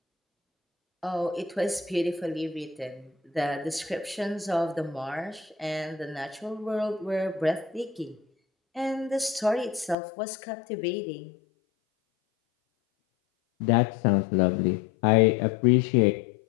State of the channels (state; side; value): drops out; right; at 10.0 s